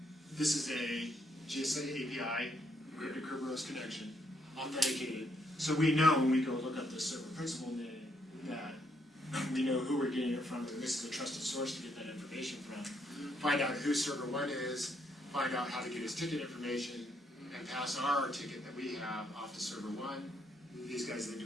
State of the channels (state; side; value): normal; both; correlation 0.74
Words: this is a GSA API, encrypted Kerberos connection, authenticated. So we know when we go look up the server principal name that we know who we're getting it from, and this is a trusted source to get that information from. Find out who server 1 is, find out how to get his ticket information, and pass our ticket that we have off to server 1. These guys then